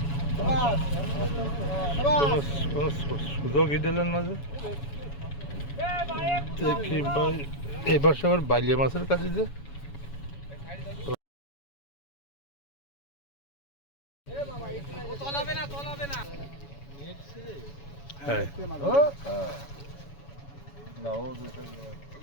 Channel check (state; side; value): late; right; 7.1 ms